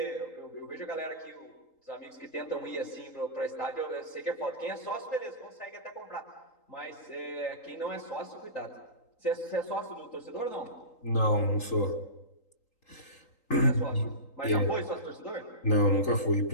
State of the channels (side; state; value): right; late; 3.8 ms